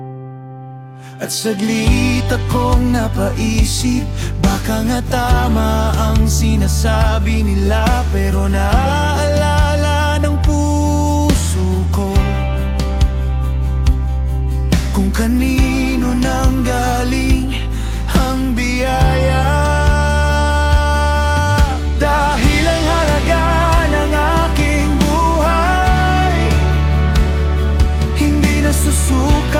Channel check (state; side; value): identical; both; correlation 1.00